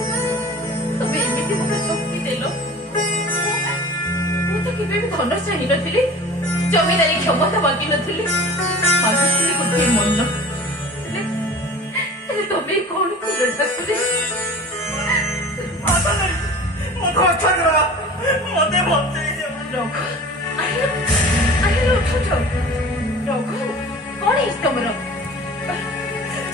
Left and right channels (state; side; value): normal; both; correlation 0.40